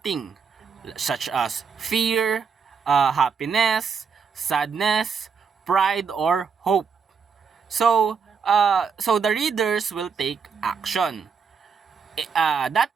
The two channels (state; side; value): quieter; left; 6.0 dB